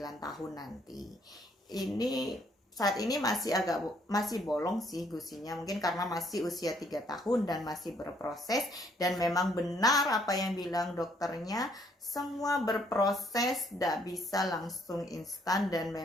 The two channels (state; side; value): normal; both; correlation 0.67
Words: tahun nanti. Ini saat ini masih bolong sih gusinya, mungkin karena masih usia 3 tahun dan masih berproses. Dan memang benar apa yang bilang dokternya, semua berproses, tidak bisa langsung instan. Dan